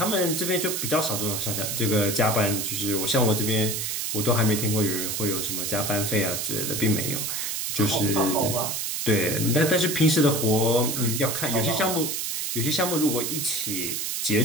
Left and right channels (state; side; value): noise; right; hiss, 2 dB below the sound